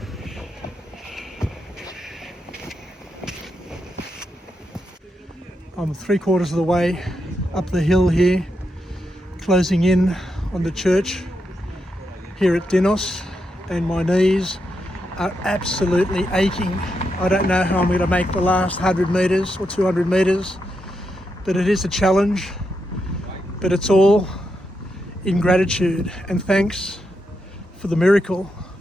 I'm 3/4 of the way up the hill here, closing in on the church here at Tinos, and my knees are absolutely aching. I don't know how I'm going to make the last 100 metres or 200 metres, but it is a challenge. But it's all in gratitude and thanks for the miracle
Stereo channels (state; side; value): normal; both; correlation 0.84